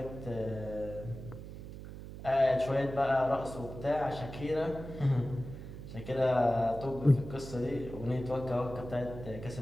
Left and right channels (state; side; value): noise; right; hum, 11 dB below the sound